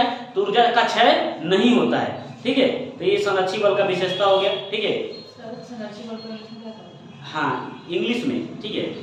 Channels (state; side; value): identical; both; correlation 1.00